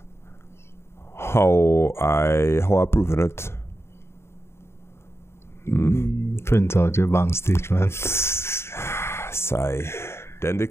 how I proving it? Print out your bank statement. Sigh. Then they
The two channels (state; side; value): late; right; 0.12 ms